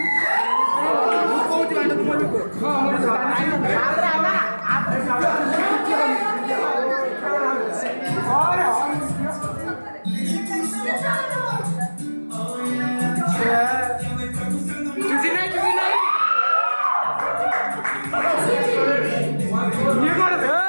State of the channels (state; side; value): inverted; both; correlation -1.00